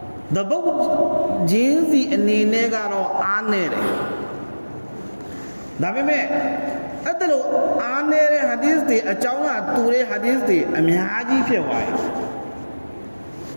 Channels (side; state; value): both; inverted; correlation -1.00